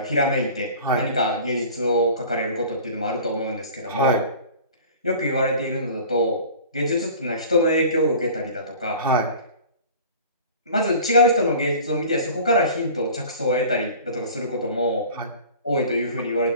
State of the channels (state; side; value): inverted; both; correlation -0.43